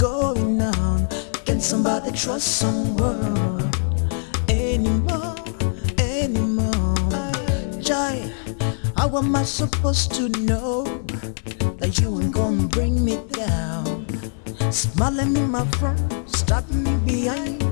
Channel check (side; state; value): right; silent; digital silence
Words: Can somebody trust someone anymore? Jai, how am I supposed to know that you ain't gonna bring me down? Smiling in my front, stabbing me behind.